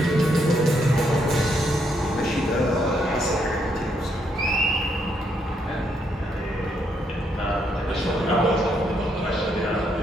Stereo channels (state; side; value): normal; both; correlation 0.75